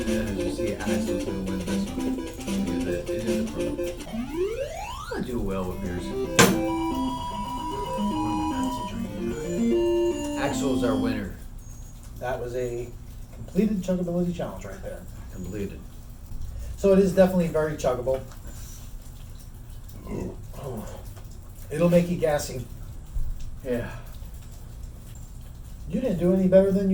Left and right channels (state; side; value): identical; both; correlation 1.00